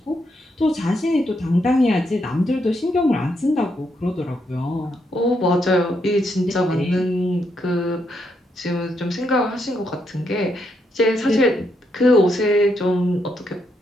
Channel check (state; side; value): normal; both; correlation 0.78